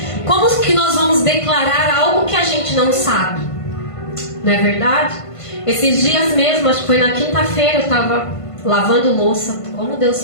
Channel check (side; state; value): right; late; 1.5 ms